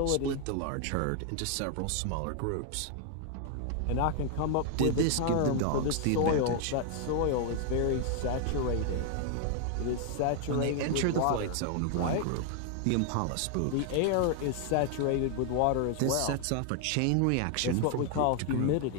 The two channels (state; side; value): different; both; correlation 0.00